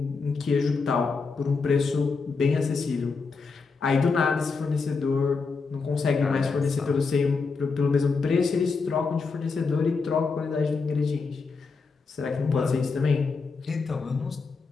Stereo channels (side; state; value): right; quieter; 4.6 dB